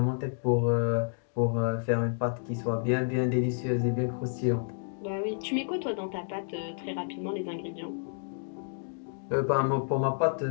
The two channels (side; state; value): right; silent; digital silence